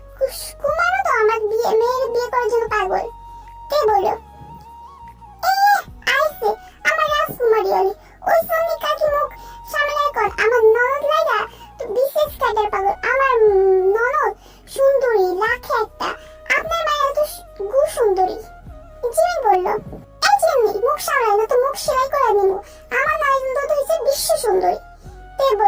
তো আমার মেয়ের বিয়ে করার জন্য পাগল। কে বলল, আইছে আমার রাজকুমারী হলি, ওই সন্নি কাকি মুখ সামলায় কর। আমার ননদ লাইগা তো বিশেষ কাটার পাগল, আমার ননদ সুন্দরী লাখে একটা, আপনার মায়ের তো গু সুন্দরী। জিমিন বলল, এই জিমি, মুখ সামলাই না তো মুখ সেলাই করে দিব, আমার ননদ তো হইছে বিশ্ব সুন্দরী। তে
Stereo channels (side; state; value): both; identical; correlation 1.00